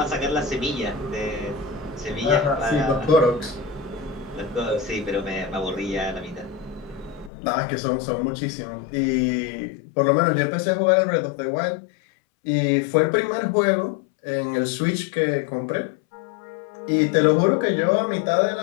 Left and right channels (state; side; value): drops out; right; at 7.3 s